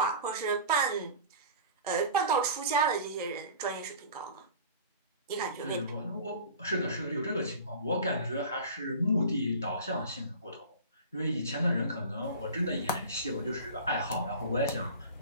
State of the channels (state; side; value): inverted; both; correlation -0.38